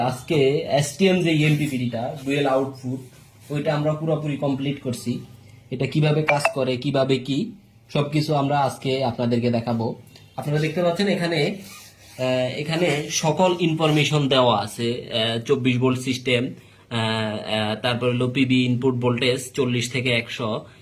আজকে এসটিএম যে এমপিপিডিটা ডুয়েল আউটপুট, ওইটা আমরা পুরোপুরি কমপ্লিট করছি। এটা কিভাবে কাজ করে, কিভাবে কি সবকিছু আমরা আজকে আপনাদেরকে দেখাবো। আপনারা দেখতে পাচ্ছেন এখানে সকল ইনফরমেশন দেওয়া আছে। 24 ভোল্ট সিস্টেম, তারপর হলো পিবি ইনপুট ভোল্টেজ 40 থেকে 100,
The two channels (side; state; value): both; identical; correlation 1.00